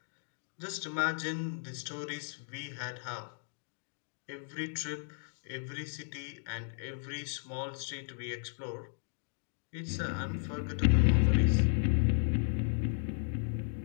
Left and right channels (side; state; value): right; silent; digital silence